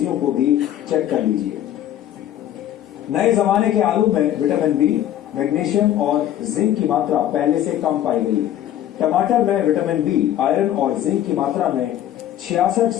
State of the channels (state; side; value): quieter; right; 11.7 dB